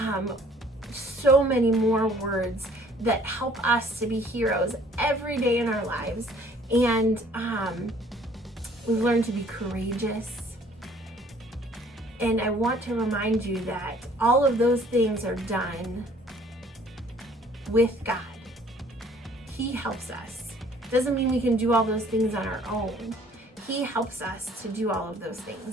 so many more words that help us to be heroes every day in our lives. And we've learned to be courageous. And I want to remind you that all of those things are done with God. He helps us. Doesn't mean we can do all those things on our own. He helps us to do all of those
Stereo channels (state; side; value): normal; both; correlation 0.57